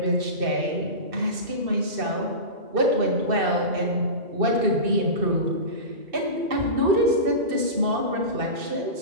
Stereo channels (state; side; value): late; left; 2.6 ms